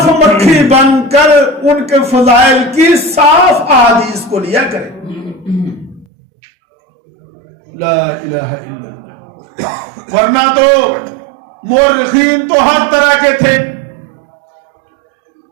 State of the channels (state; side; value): drops out; left; at 6.1 s